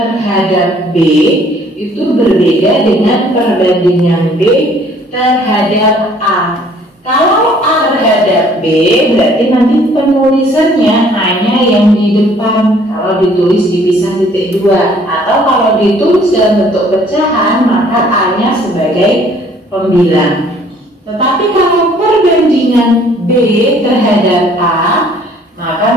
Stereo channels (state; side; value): normal; both; correlation 0.58